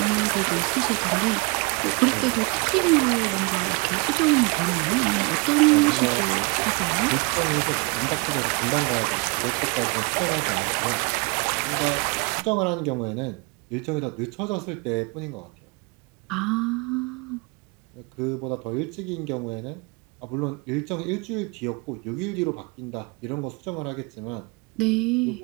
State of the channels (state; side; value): quieter; left; 28.4 dB